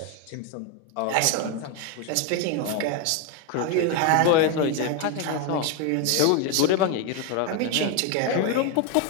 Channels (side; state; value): both; different; correlation 0.01